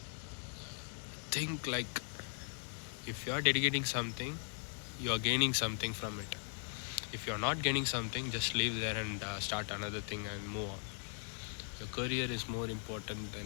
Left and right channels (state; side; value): silent; right; 52 dB below the other